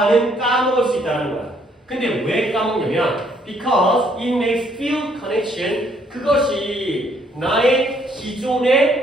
까먹을 수 있다는 거야. 근데 왜 까먹냐면 because it makes feel connection 그것이 나의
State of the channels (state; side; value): normal; both; correlation 0.67